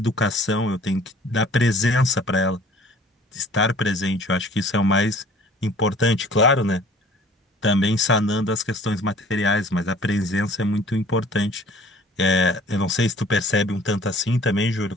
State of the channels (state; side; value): normal; both; correlation 0.51